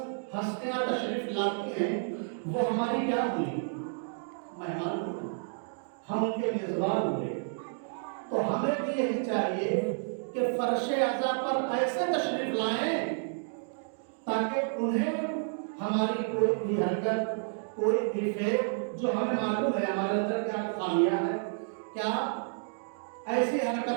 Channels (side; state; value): left; silent; digital silence